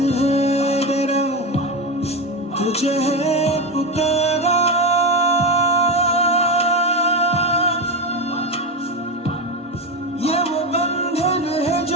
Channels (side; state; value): both; normal; correlation 0.15